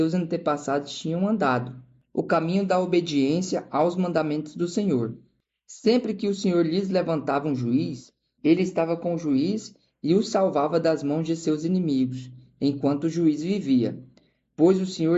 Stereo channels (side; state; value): both; identical; correlation 1.00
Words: antepassados tinham andado, o caminho da obediência aos mandamentos do Senhor. Sempre que o Senhor lhes levantava um juiz, ele estava com o juiz e os salvava das mãos de seus inimigos, enquanto o juiz vivia, pois o